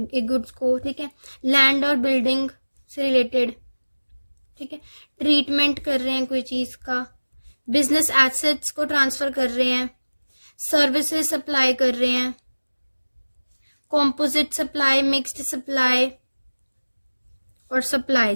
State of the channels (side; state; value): both; inverted; correlation -1.00